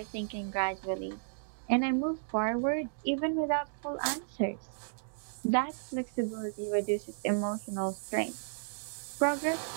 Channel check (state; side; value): silent; left; digital silence